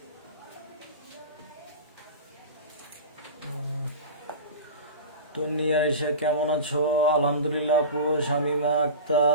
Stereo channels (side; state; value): both; inverted; correlation -0.30